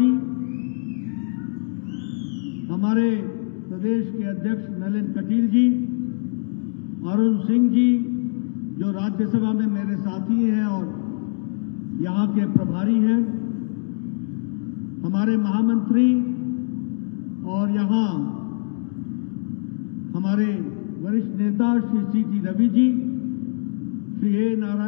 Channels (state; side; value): quieter; right; 39.1 dB